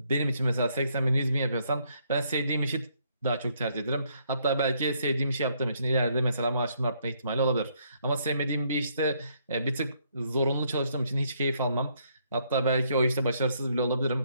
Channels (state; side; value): inverted; both; correlation -0.71